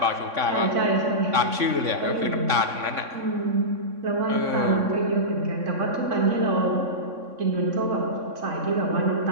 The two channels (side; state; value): left; late; 3.6 ms